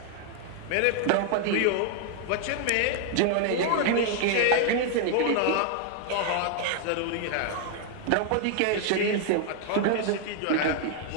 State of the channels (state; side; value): different; both; correlation 0.00